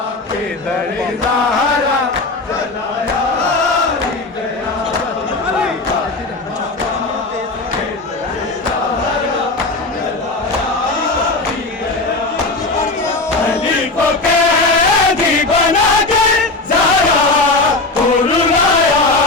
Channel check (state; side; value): quieter; right; 3.3 dB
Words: के दरे ज़हरा जलाया भी गया। अली को कैदी बना के ज़हरा को रुलाया